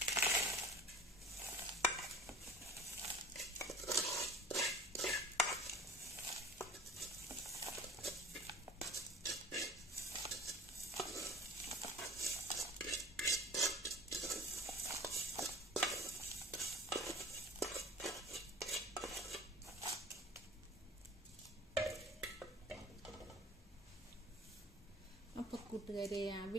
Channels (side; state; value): both; normal; correlation 0.42